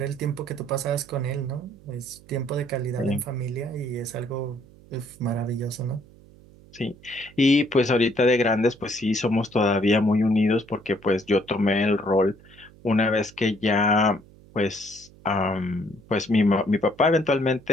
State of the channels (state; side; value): noise; right; hum, 24 dB below the sound